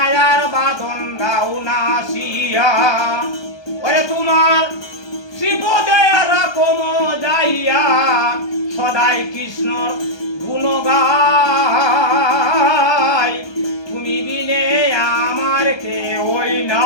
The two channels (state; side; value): late; right; 1.2 ms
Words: বাদন দাও নাশিয়া। ওরে তোমার শ্রীপদে রাখম যাইয়া সদাই কৃষ্ণর গুণগাই, তুমি বিনে আমার কেউই